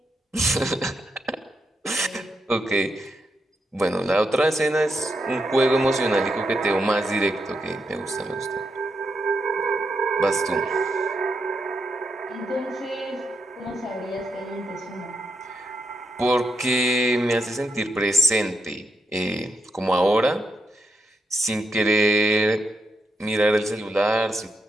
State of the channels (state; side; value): normal; both; correlation 0.84